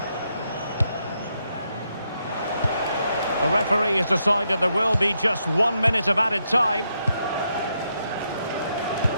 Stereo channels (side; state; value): both; inverted; correlation -0.80